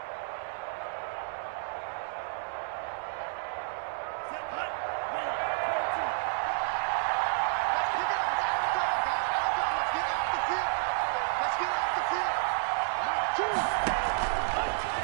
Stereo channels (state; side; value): silent; left; 57 dB below the other